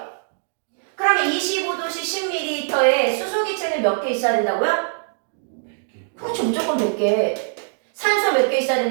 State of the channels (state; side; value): silent; left; digital silence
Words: 그러면 25도씨 10ml에 수소기체는 몇 개 있어야 된다고요? 그렇죠. 무조건 100개. 산소 몇 개 있어야